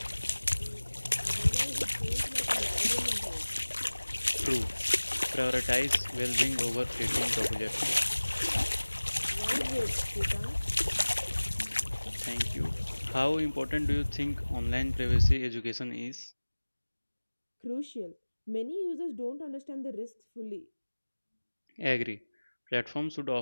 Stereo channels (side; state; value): both; inverted; correlation -1.00